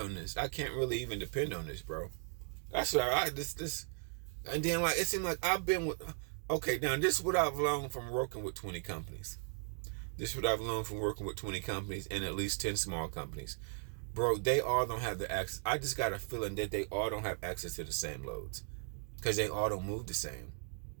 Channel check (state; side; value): silent; left; 53 dB below the other